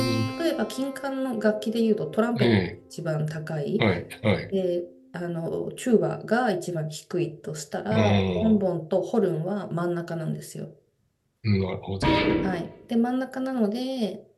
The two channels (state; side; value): identical; both; correlation 1.00